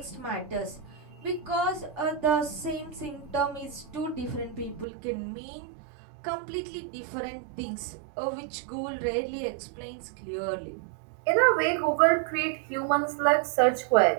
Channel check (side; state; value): left; drops out; at 4.9 s